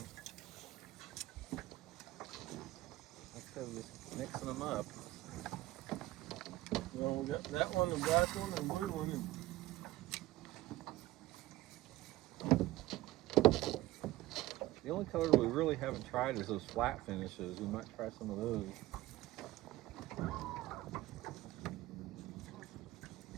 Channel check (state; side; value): quieter; left; 17.2 dB